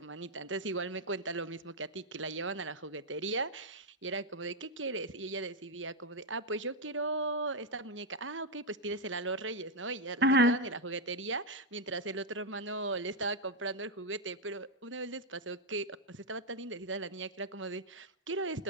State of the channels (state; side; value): normal; both; correlation 0.00